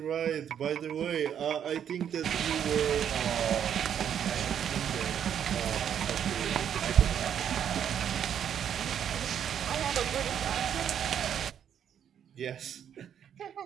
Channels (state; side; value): quieter; left; 8.9 dB